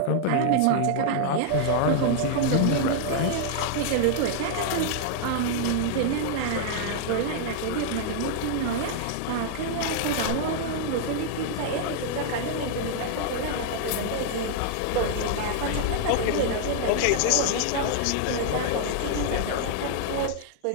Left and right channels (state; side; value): different; both; correlation -0.01